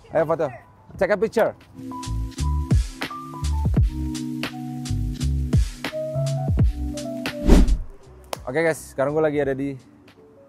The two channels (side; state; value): both; identical; correlation 1.00